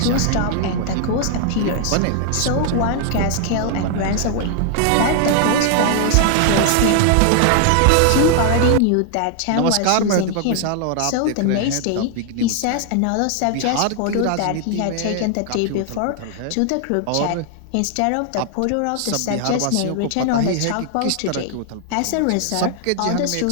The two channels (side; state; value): both; different; correlation 0.00